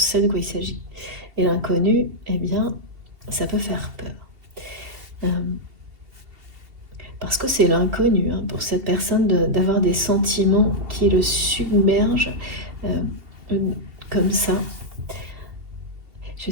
de quoi il s'agit. Et l'inconnu, eh bien, ça peut faire peur. Parce que c'est l'inconnu, hein, pour cette personne d'avoir des sentiments qui le submergent comme ça. Je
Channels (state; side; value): late; left; 2.7 ms